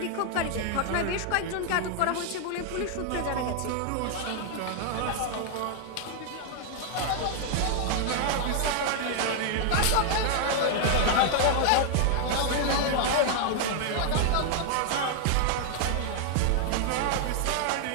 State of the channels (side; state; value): both; different; correlation 0.00